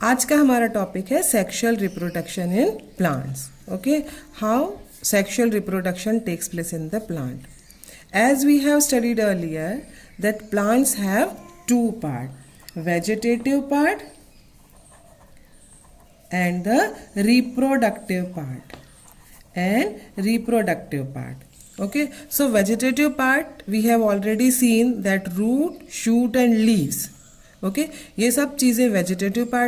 आज का हमारा टॉपिक है sexual reproduction in plants. Okay, how sexual reproduction takes place in the plant. As we have studied earlier that plants have two parts, vegetative part and the reproductive part. Okay, so vegetative part we have already seen that root, shoot and leaves. Okay, ये सब चीज़ें vegetative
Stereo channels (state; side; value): identical; both; correlation 1.00